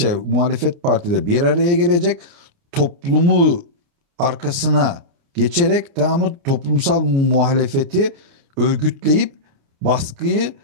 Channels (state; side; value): late; left; 29 ms